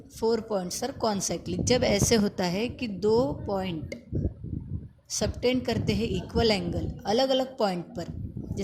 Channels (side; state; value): both; identical; correlation 1.00